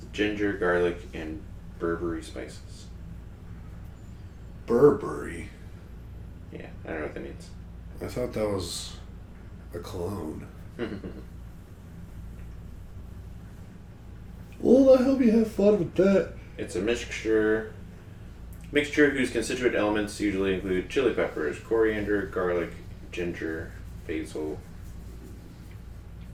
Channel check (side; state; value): both; identical; correlation 1.00